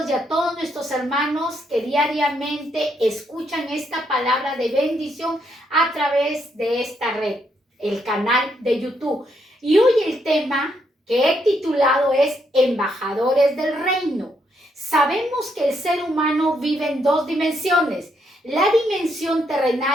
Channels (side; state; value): both; normal; correlation 0.76